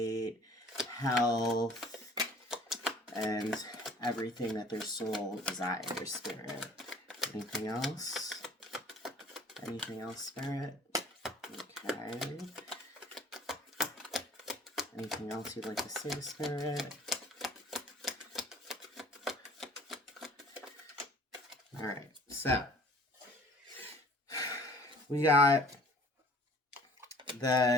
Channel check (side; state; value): both; normal; correlation 0.51